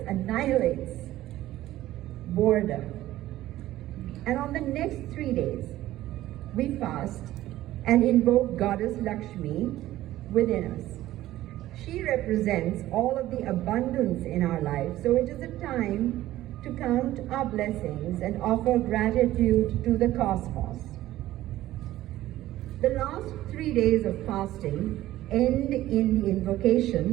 annihilates boredom. And on the next 3 days, we fast and invoke Goddess Lakshmi within us. She represents all of the abundance in our life, so it is a time to count our blessings and offer gratitude to the cosmos. The last 3 days of fasting end in the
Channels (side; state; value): left; quieter; 14.9 dB